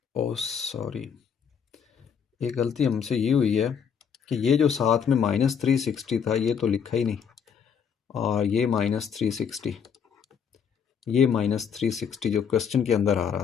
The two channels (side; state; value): right; quieter; 7.2 dB